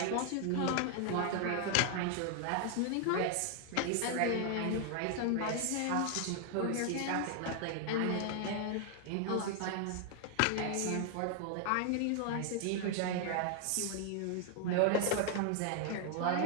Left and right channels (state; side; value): different; both; correlation 0.00